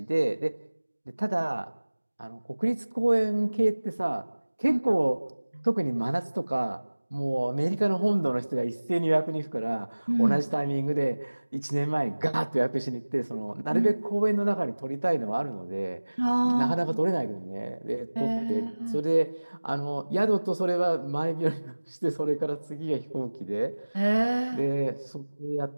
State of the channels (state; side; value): inverted; both; correlation -1.00